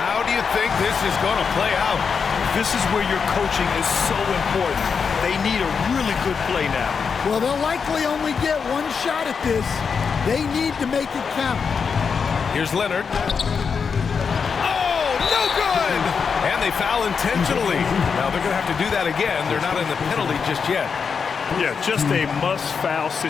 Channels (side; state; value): right; quieter; 5.9 dB